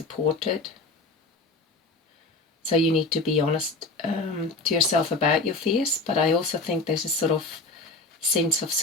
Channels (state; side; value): quieter; right; 3.3 dB